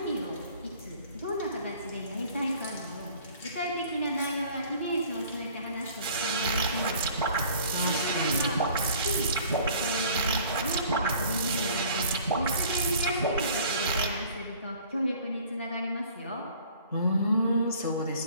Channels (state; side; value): inverted; both; correlation -0.51